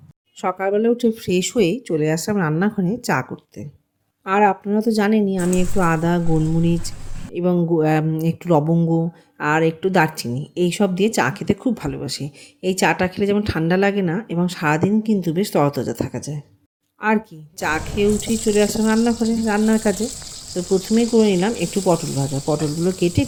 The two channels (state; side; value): identical; both; correlation 1.00